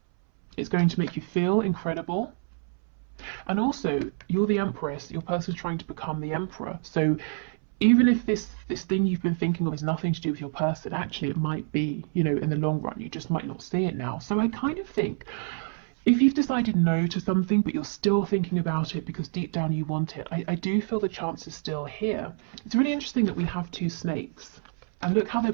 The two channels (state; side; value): silent; left; 60 dB below the other